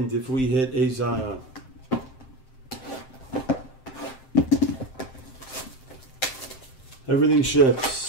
if we hit a Zion. Everything ships.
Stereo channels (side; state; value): right; late; 7.7 ms